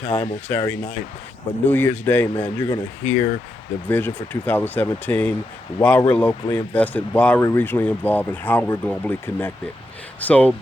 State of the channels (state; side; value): normal; both; correlation 0.84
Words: on Saturday night. But New Year's Day, man, you're going to hear the vision for 2017, why we're locally invested, why we're regionally involved, and how we're globally connected. So